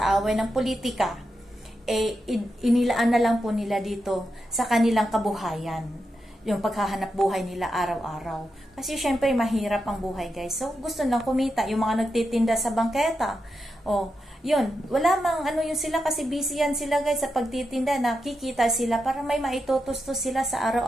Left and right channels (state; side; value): normal; both; correlation 0.87